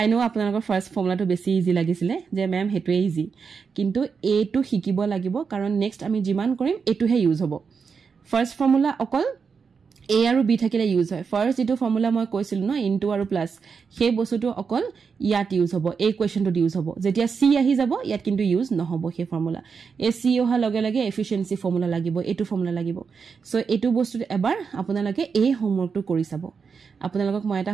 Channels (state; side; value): quieter; left; 5.7 dB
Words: নো আপোনালোকৰ ফাৰ্স্ট ফৰ্মুলাটো বেছি ইজি লাগিছিলে যে ম্যাম হেতুৱে ইজি কিন্তু এ টু শিকিব লাগিব কাৰণ নেক্সট আমি জিমান কৰিম এটোহে ইউজ হ'ব ফাৰ্স্ট ফৰ্মুলা অকল a আৰু b থাকিলে ইউজ হয় ফাৰ্স্ট ইটো ফৰ্মুলা মই কৈছিলো ন ইনটু আৰু প্লাস সেই বস্তুটো অকল ইয়াত ইউজ হ'ব এই কোৱেশ্চনটো ইউজ হ'ব যেতিয়া c আহি যাব ইয়াত কিন্তু ইউজ নহব সেই ফৰ্মুলা এ c অহা লগে লগে এফিচিয়েন্সি ফৰ্মুলা লাগিব এটো ফৰ্মুলা লাগিব সো এটো বস্তুটো এবাৰ আপোনালোকে এই হোমৱৰ্কটো কৰি চাব আপোনালোকক মই এটা